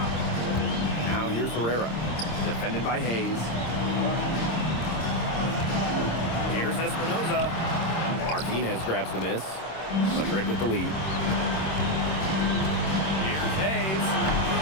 Now here's Herrera, defended by Hayes. Here's Espinoza. Martinez grabs the miss. Madrid with the lead. Here's Hayes.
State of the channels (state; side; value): late; right; 26 ms